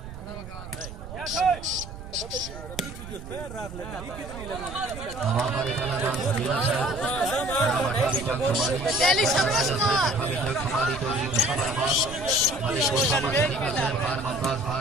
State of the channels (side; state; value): right; noise; rumble, 12 dB below the sound